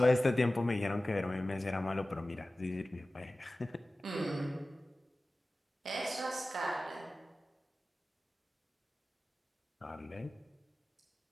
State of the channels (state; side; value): normal; both; correlation 0.97